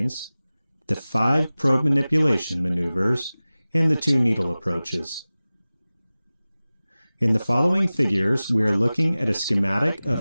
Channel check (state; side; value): inverted; both; correlation -0.97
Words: the 5 probe manipulation maneuvers, and the 2 needle approaches. In the following figures, we are looking at a schematic